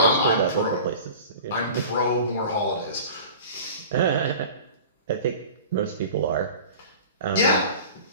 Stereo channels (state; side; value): inverted; both; correlation -0.39